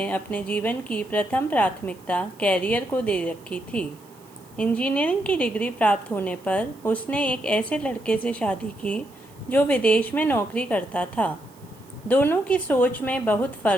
अपने जीवन की प्रथम प्राथमिकता कैरियर को दे रखी थी। इंजीनियरिंग की डिग्री प्राप्त होने पर उसने एक ऐसे लड़के से शादी की जो विदेश में नौकरी करता था। दोनों की सोच में बहुत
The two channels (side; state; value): right; noise; hiss, 27 dB below the sound